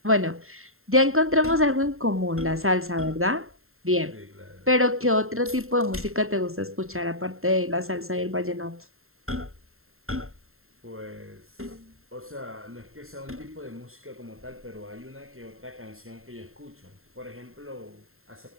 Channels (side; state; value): left; late; 0.61 ms